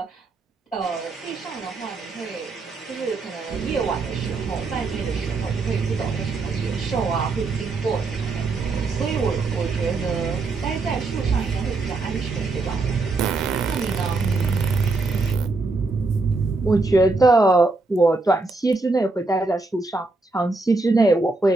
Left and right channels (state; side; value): quieter; left; 3.5 dB